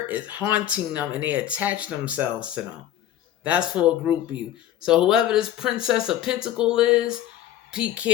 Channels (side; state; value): right; quieter; 11.8 dB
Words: is haunting them, and they attach themselves to them. That's for a group of you. So whoever this Princess of Pentacle is, be